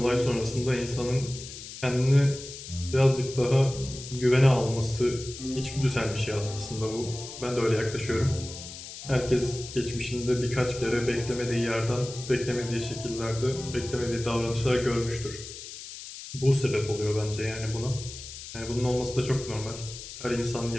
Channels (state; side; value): noise; left; hiss, 12 dB below the sound